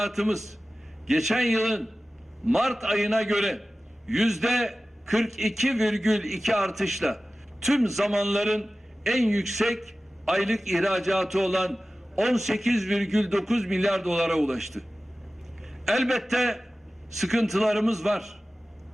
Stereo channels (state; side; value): normal; both; correlation 0.96